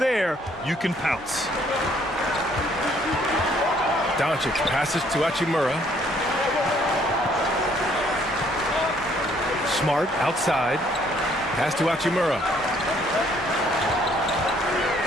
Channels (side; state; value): both; normal; correlation 0.64